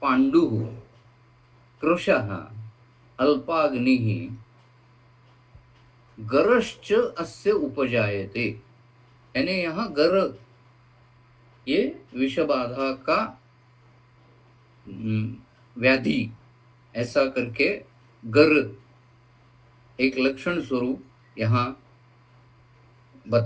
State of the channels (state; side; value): identical; both; correlation 1.00